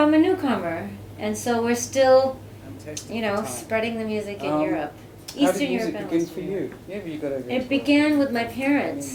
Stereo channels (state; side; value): identical; both; correlation 1.00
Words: a newcomer, and so we're still, Fantastic you know, time. spreading the music in Um, Europe, How Eastern did Europe music and begin Western for Europe. you? Yeah, but you got to. It began with my parents.